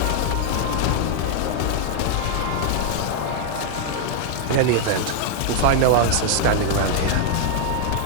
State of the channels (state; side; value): different; both; correlation 0.00